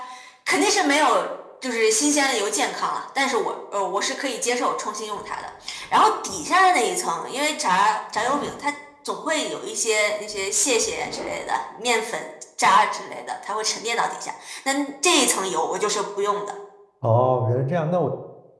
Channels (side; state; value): both; identical; correlation 1.00